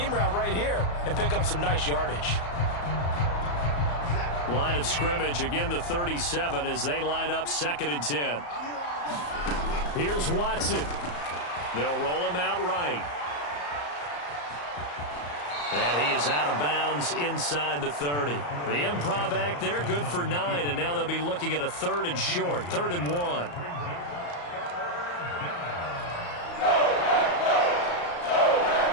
route right here and pick up some nice yardage. Line of scrimmage, again the 37 as they line up 2nd and 10. Here's Watson. They'll roll him out right. And he is out of bounds inside the 30. The improv act there, good for 9, and now they'll be looking at a 3rd and short, 3rd and 1.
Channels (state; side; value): late; right; 34 ms